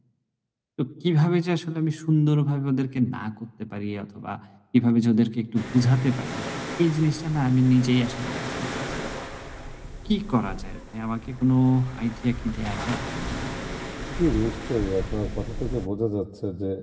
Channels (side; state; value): both; identical; correlation 1.00